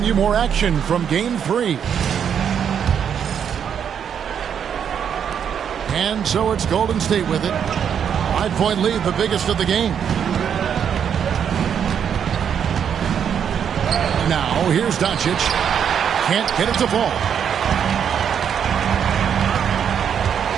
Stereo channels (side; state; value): left; quieter; 8.1 dB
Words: you more action from Game 3. And so it's Golden State with it. 5-point lead, the biggest of the game. Now, here's Doncic. Can't get it to fall.